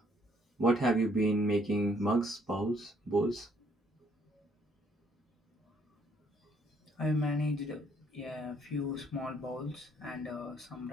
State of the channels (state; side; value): normal; both; correlation 0.67